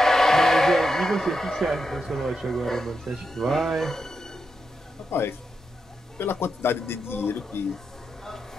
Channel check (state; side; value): normal; both; correlation 0.85